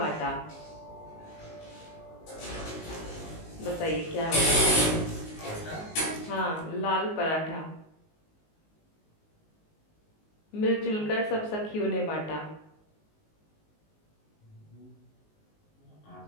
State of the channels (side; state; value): right; late; 19 ms